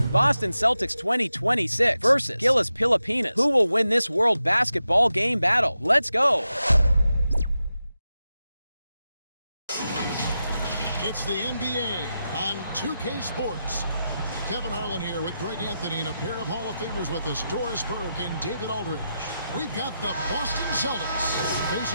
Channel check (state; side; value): inverted; both; correlation -0.89